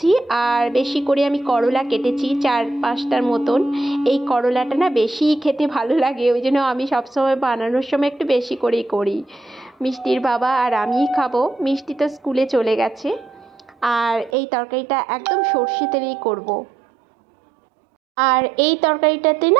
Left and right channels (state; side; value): drops out; left; at 14.3 s